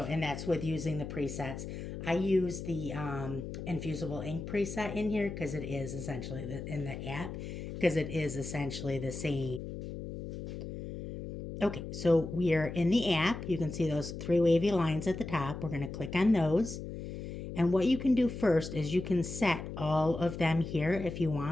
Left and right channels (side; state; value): left; noise; hum, 8 dB below the sound